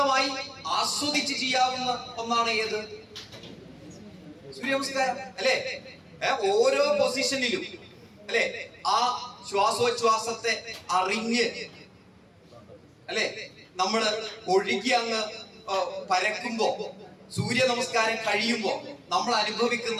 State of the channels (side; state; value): both; identical; correlation 1.00